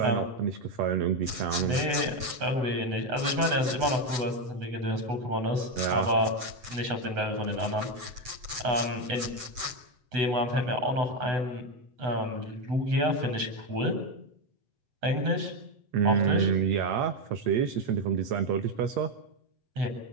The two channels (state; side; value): late; left; 8.1 ms